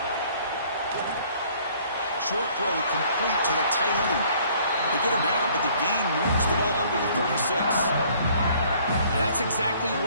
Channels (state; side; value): inverted; both; correlation -0.58